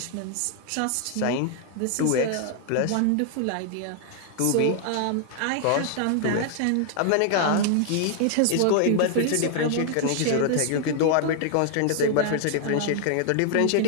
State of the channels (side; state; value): both; different; correlation 0.00